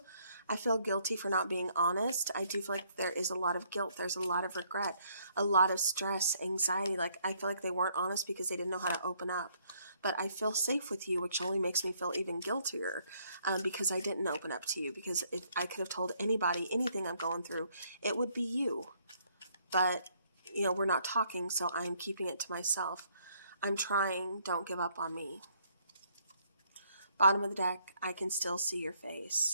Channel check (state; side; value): inverted; both; correlation -0.68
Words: I feel guilty for not being honest. I do feel like there is a lot of guilt. There's a lot of regret, a lot of stress, anxiety. Like I feel like they weren't honest because they didn't know how to open up. But I feel safe with you, which only makes me feel even guiltier because I didn't open up to you. Because if I could have told anybody anything I'm going through, it would be you. But, you know, we're not talking, so I'm keeping it to myself. I'm trying. Don't give up on me. Bottom of the deck, I can still see your